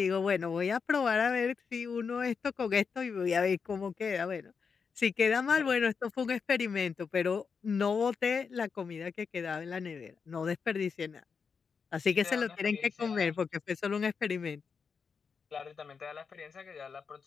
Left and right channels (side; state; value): right; quieter; 5.7 dB